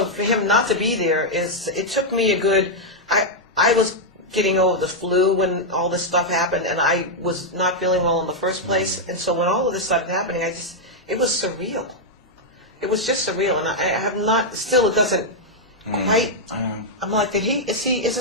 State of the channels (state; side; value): normal; both; correlation -0.02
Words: for him not to be there it took me I was getting over the flu when all this stuff happened, and I was not feeling well in the first place, and so when all of this started happening, it was surreal. It was just surreal, and I have not, still it doesn't quite, I'm like, is